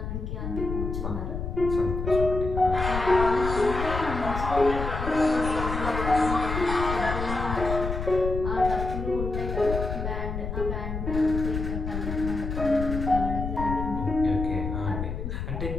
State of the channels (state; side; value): noise; left; rumble, 4 dB below the sound